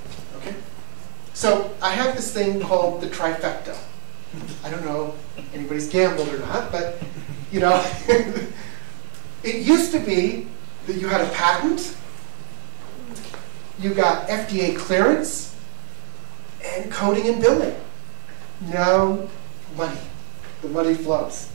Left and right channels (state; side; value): silent; left; digital silence